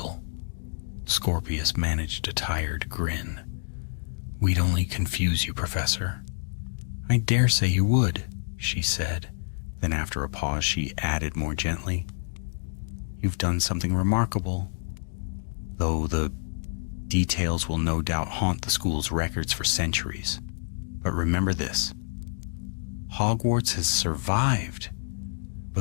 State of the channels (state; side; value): silent; right; digital silence